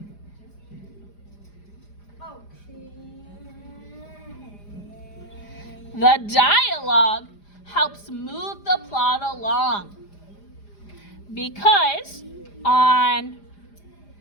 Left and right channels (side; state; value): right; late; 4.9 ms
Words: helps move the plot along. Because on